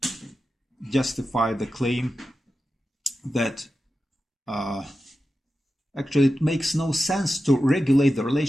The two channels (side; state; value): both; normal; correlation 0.92